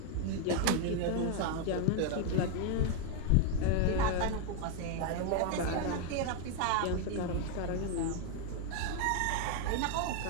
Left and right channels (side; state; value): both; different; correlation 0.01